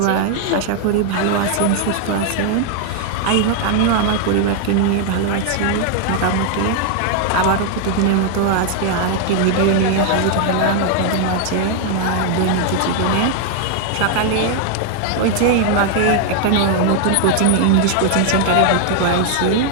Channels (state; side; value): different; both; correlation 0.00